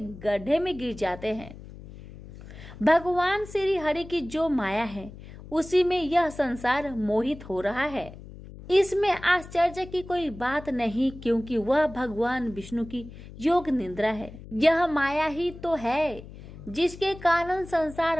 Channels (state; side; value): noise; left; hum, 16 dB below the sound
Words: में गिर जाते हैं। भगवान श्री हरि की जो माया है, उसी में यह संसार मोहित हो रहा है। इसमें आश्चर्य की कोई बात नहीं, क्योंकि वह भगवान विष्णु की योग निद्रा है। यह माया ही तो है जिसके कारण